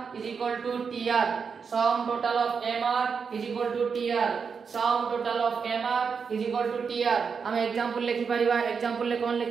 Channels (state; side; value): quieter; left; 5.9 dB